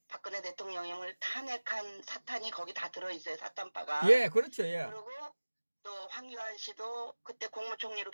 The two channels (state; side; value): inverted; both; correlation -1.00